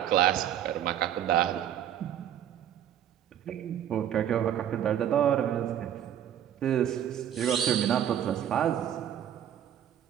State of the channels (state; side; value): quieter; left; 10.4 dB